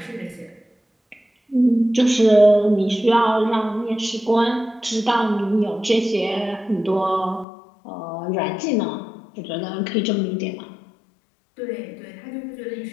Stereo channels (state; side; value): drops out; right; at 7.5 s